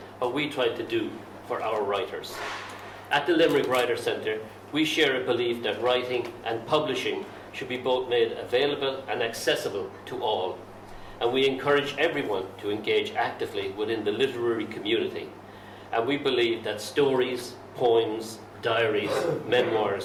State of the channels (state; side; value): identical; both; correlation 1.00